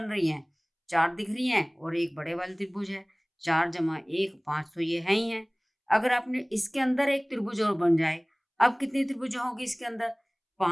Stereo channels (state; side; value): identical; both; correlation 1.00